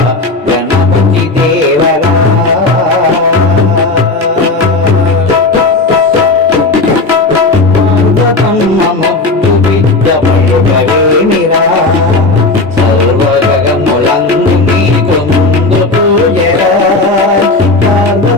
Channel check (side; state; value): right; quieter; 3.3 dB